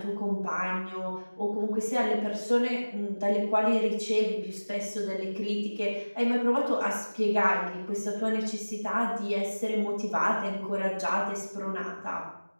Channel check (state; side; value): inverted; both; correlation -1.00